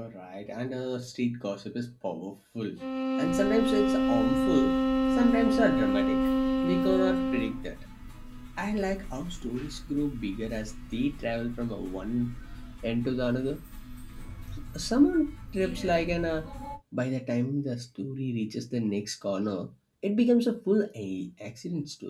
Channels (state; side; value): identical; both; correlation 1.00